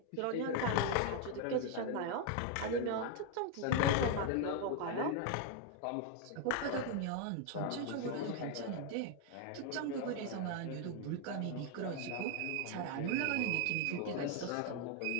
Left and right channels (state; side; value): different; both; correlation 0.01